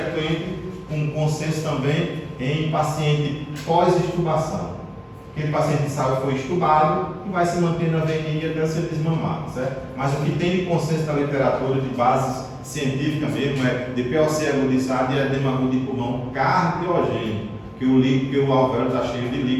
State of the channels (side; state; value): both; identical; correlation 1.00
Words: com consenso também em paciente pós-extubação. Aquele paciente de saúde foi extubado e vai se manter na VNI até ser desmamado, certo? Mas o que tem de consenso na literatura de base científica mesmo é DPOC agudizado e edema agudo de pulmão cardiogênico, que o alvéolo está cheio de